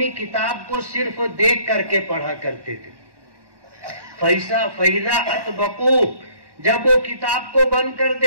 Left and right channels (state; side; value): late; left; 1.1 ms